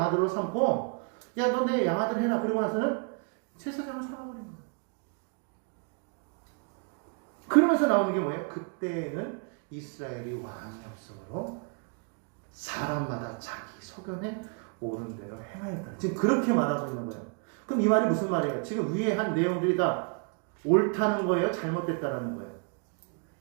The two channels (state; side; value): quieter; left; 37.7 dB